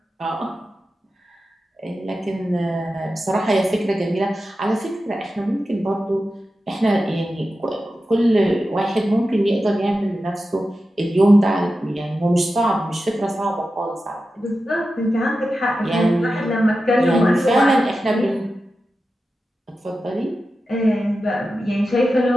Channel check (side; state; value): both; normal; correlation 0.92